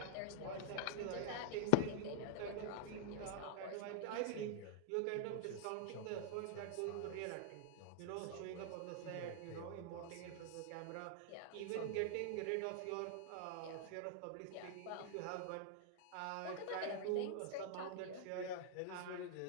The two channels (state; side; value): different; both; correlation -0.01